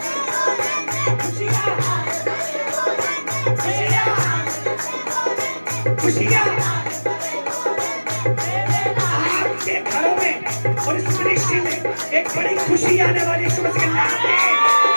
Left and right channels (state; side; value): inverted; both; correlation -1.00